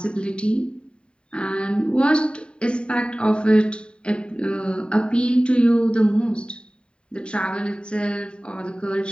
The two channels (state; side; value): late; right; 0.052 ms